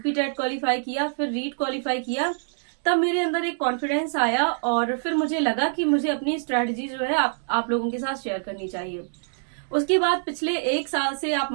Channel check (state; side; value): silent; left; digital silence